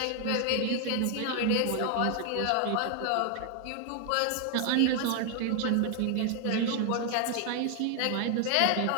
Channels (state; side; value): different; both; correlation 0.00